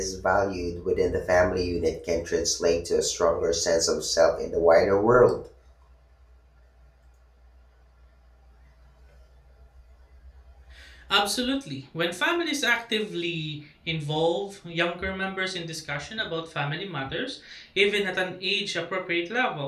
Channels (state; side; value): identical; both; correlation 1.00